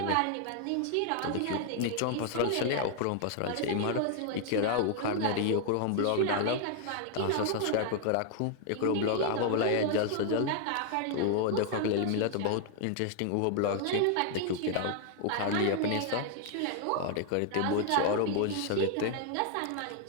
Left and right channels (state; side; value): different; both; correlation 0.00